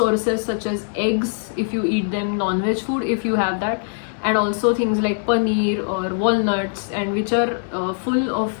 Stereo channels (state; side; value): silent; right; 62 dB below the other